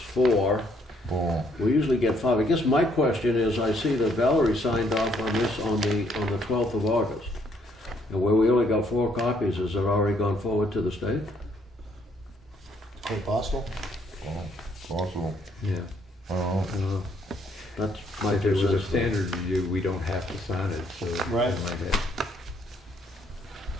Oh, We usually get five. I guess my question is, I see that Valerie signed off on this on the 12th of August. And where we only got 4 copies, has it already gone forward to the state? Quite possible. oh, possible. Yeah. I don't know. That's my If it was a 2 cents. standard review, we don't have to sign it, so. Right. I might have-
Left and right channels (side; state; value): both; normal; correlation 0.68